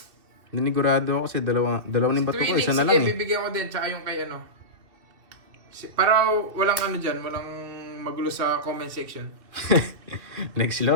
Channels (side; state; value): left; late; 2.7 ms